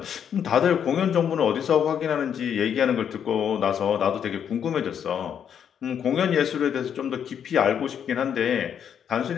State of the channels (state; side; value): quieter; right; 8.4 dB